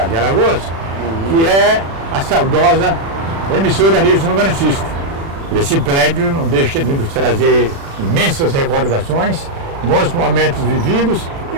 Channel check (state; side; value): late; left; 36 ms